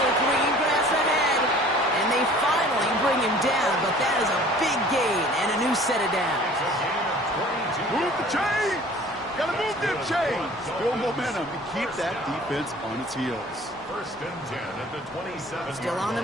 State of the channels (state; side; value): normal; both; correlation 0.49